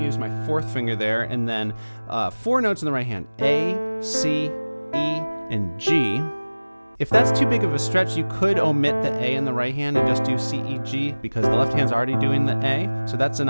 use my fourth finger there, and then four notes in the right hand, A, C, E, and G. If that's too big of a stretch, you could omit the A in the right hand and just do C, E, G, because the left hand's already doing the A, so that's an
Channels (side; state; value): both; inverted; correlation -1.00